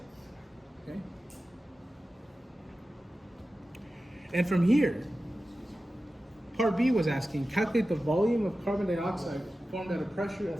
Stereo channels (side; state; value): both; normal; correlation 0.94